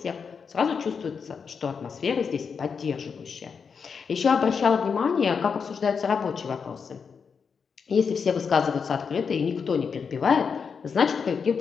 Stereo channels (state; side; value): quieter; right; 6.0 dB